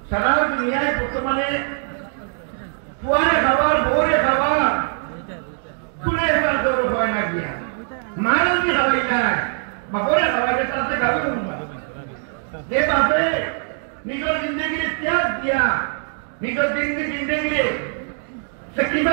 সারা দুনিয়ায় বর্তমানে ফুয়ারে খাবার বউরে খাবার তুলে এবার গৌরব হয় না গিয়া মারে যদি খাওয়াই যায় বাপরে খাওয়াই যায় তাতে গাবে উঠবা যে বাপে নিজের জিন্দগিরে ত্যাগ দিয়া নিজের জিন্দগিরে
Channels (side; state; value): left; silent; 58 dB below the other